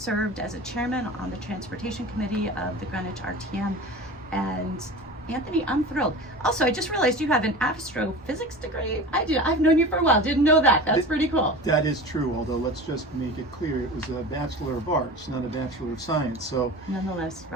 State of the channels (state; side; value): normal; both; correlation 0.34